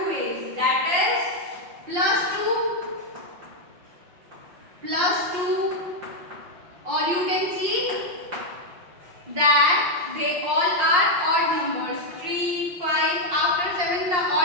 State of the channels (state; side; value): late; left; 5.6 ms